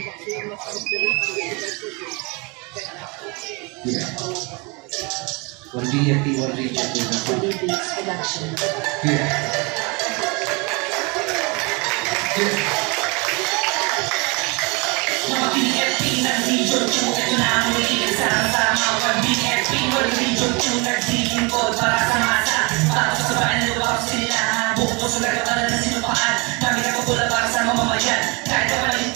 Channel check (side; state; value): left; quieter; 29.2 dB